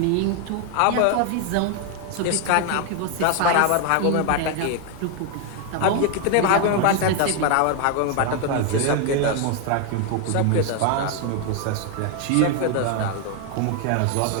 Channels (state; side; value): different; both; correlation 0.01